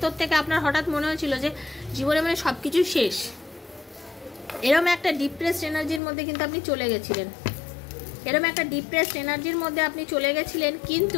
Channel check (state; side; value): drops out; right; at 6.0 s